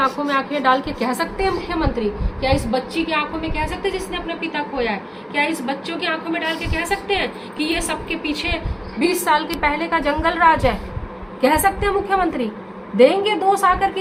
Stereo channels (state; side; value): identical; both; correlation 1.00